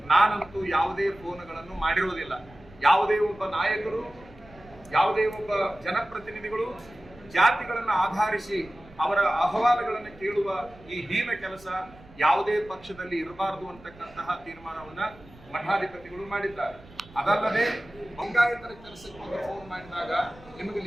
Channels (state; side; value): noise; right; rumble, 22 dB below the sound